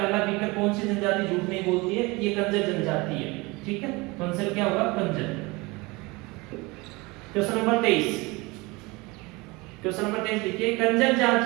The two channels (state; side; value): quieter; left; 24.3 dB